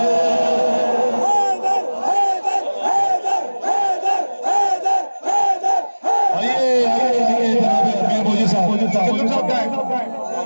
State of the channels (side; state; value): both; inverted; correlation -1.00